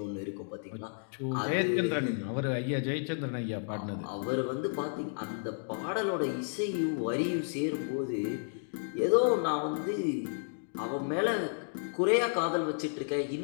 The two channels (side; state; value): right; silent; digital silence